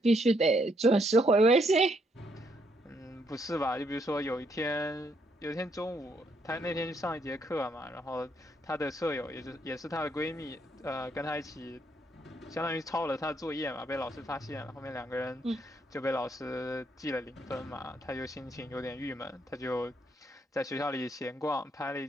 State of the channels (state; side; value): normal; both; correlation 0.73